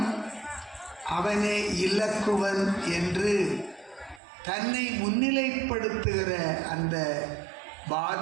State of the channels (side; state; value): left; drops out; at 4.2 s